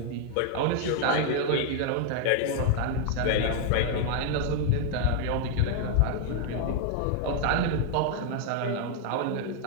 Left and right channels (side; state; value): both; different; correlation 0.00